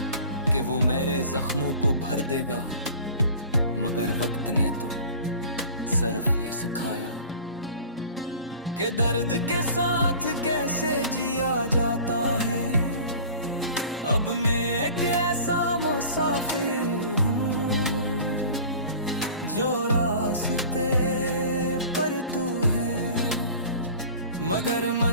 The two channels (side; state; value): both; inverted; correlation -0.43